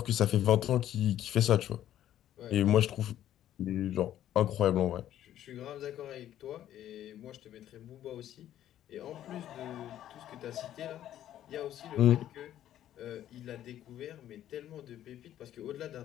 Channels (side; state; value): right; quieter; 11.9 dB